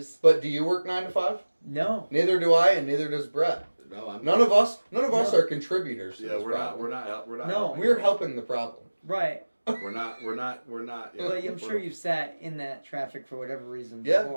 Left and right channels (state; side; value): inverted; both; correlation -1.00